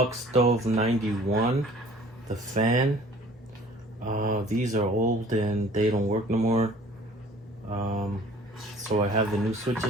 Stove 91, the fan. These are old and they don't work no more. So I have the new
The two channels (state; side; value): normal; both; correlation 0.51